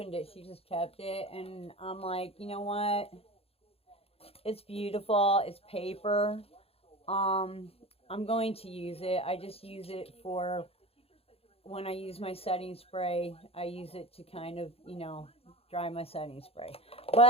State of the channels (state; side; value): late; right; 0.28 ms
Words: it. She just kept it. And I'm like, you know what? It's beautiful. It's paper. I'm going to use it. I just use it for when I use my setting spray. I use it to kind of, dry my setting spray.